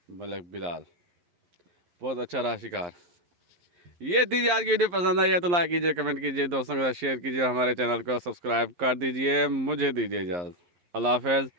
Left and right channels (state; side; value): late; left; 11 ms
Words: मलिक बिलाल। बहुत अच्छा रहा शिकार। ये दीजिए, आज की वीडियो पसंद आई है तो लाइक कीजिए, कमेंट कीजिए, दोस्तों के साथ शेयर कीजिए, हमारे चैनल को सब्सक्राइब कर दीजिए। मुझे दीजिए इजाज़त। अल्लाह हाफ़िज़।